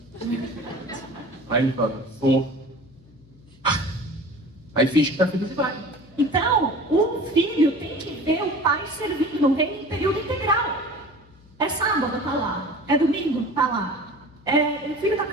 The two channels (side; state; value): left; noise; hum, 26 dB below the sound